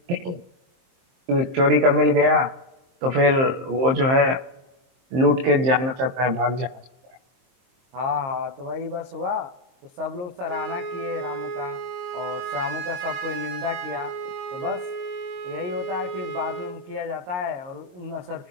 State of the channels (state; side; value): late; left; 23 ms